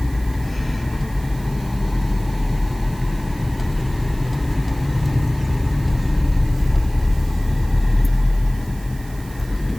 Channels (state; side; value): noise; right; hiss, 22 dB below the sound